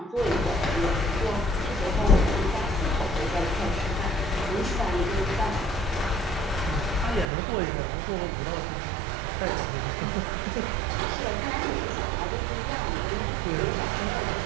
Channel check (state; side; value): drops out; left; at 7.2 s